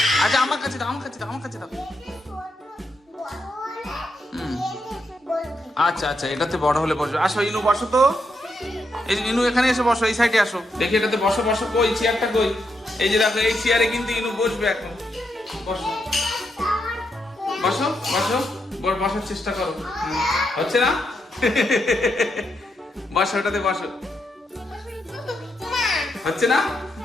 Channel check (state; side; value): normal; both; correlation 0.81